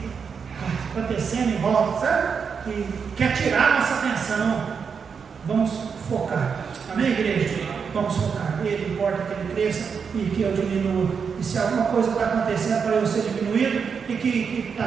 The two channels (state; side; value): quieter; left; 6.2 dB